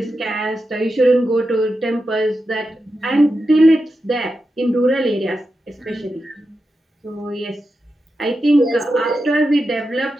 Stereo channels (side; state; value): both; normal; correlation 0.89